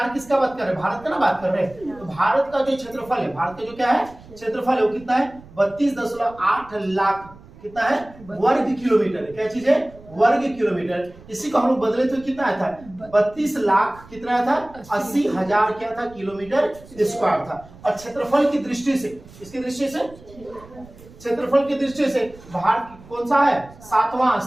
किसका बात कर रहे हैं भारत का ना बात कर रहे हैं। तो भारत का जो क्षेत्रफल है, भारत का जो क्या है क्षेत्रफल है वो कितना है 32.8 लाख कितना है वर्ग किलोमीटर है। क्या चीज है वर्ग किलोमीटर। इसी को हम लोग बदले तो कितना आया था 32 लाख कितना आया था 80,000 क्या था किलोमीटर स्क्वायर था। और क्षेत्रफल की दृष्टि से, इसकी दृष्टि से क्षेत्रफल की दृष्टि से भारत कौन सा है 7वां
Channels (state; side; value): noise; right; rumble, 21 dB below the sound